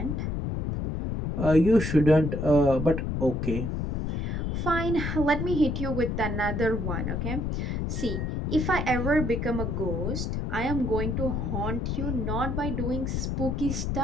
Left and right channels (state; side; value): noise; left; rumble, 1 dB below the sound